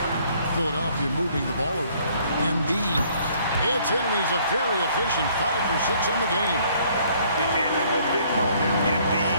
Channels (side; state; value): both; inverted; correlation -0.62